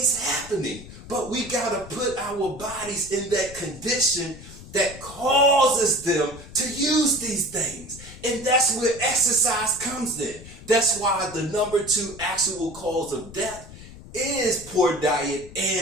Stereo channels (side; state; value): left; noise; rumble, 16 dB below the sound